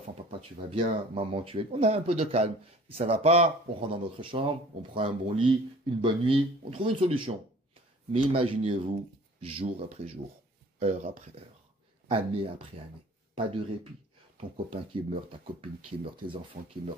papa, tu vas bien, maman, tu es... On a un peu de calme. Si ça va pas, on rentre dans notre chambre, on prend un bon lit, une bonne nuit, on trouve une solution. Mais imaginez-vous, jour après jour, heure après heure, année après année, pas de répit. Ton copain qui meurt, ta copine qui meurt, tes enfants qui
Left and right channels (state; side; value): normal; both; correlation 0.49